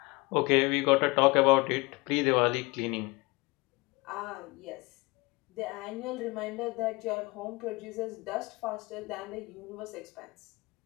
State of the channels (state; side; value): quieter; right; 25.1 dB